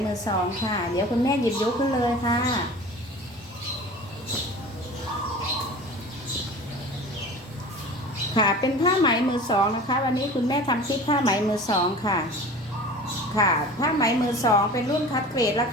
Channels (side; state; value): both; normal; correlation 0.39